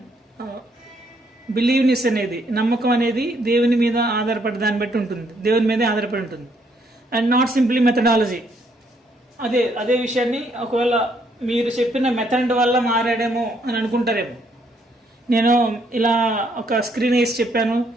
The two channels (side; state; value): both; normal; correlation 0.70